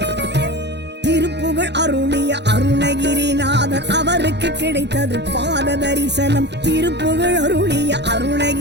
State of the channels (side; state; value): left; late; 0.50 ms